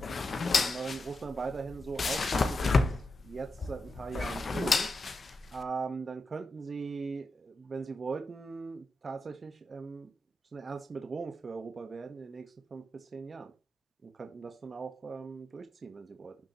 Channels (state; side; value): normal; both; correlation 0.87